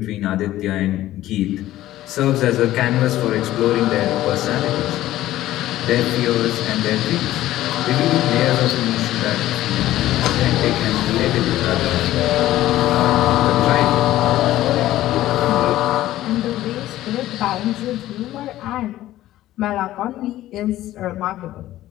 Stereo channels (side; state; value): right; quieter; 14.6 dB